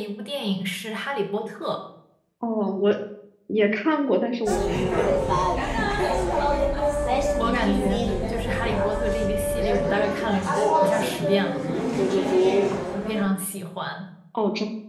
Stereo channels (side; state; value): both; identical; correlation 1.00